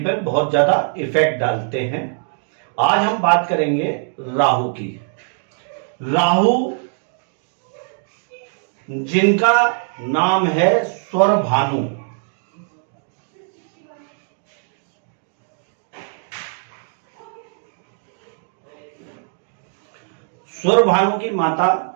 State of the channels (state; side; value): silent; left; 55 dB below the other